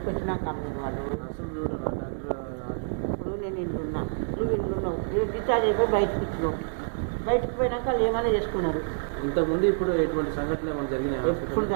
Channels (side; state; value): left; silent; digital silence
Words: వచ్చినాక అమ్మిన వాళ్ళు. ఇప్పుడు నేను ఇంటున్నా, నువ్వు ఇంటున్నావు, మీరు డిశ్చార్జ్ అయిపోయి బయటకు ఇచ్చినావు. బయటకు పోయినాక వాళ్ళు ఏమైనా చేసుకున్నారు. ఎప్పుడు